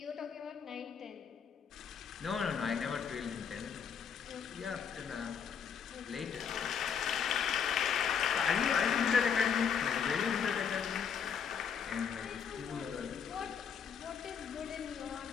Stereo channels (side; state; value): right; quieter; 7.1 dB